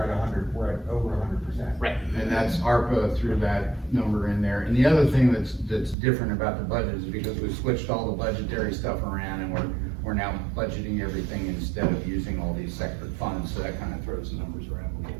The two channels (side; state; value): left; drops out; at 6.0 s